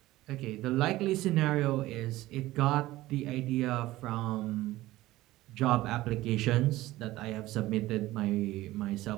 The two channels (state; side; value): quieter; left; 17.0 dB